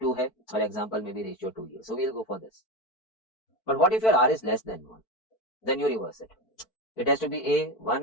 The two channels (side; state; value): right; late; 4.5 ms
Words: hai, or example may be ratio 2 here. So we'll go for this. But what if your r is less than 1? Then you reverse it. It has to be a